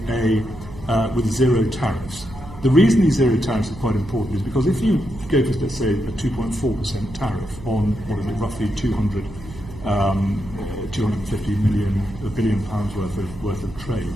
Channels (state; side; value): noise; right; hum, 16 dB below the sound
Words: zero tariffs. The reason these zero tariffs are quite important is because if you go for, let's say, a 2.4% tariff on roughly 250 million, £1 billion worth of